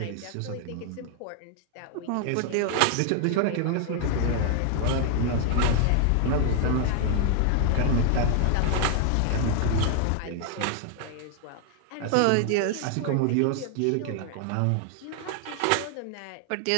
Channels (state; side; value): different; both; correlation 0.00